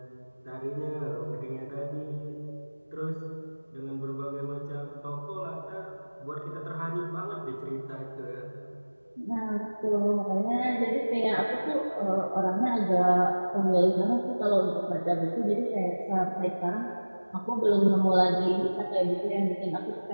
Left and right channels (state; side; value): inverted; both; correlation -1.00